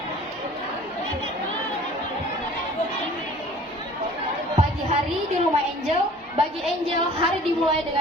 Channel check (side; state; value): both; normal; correlation 0.48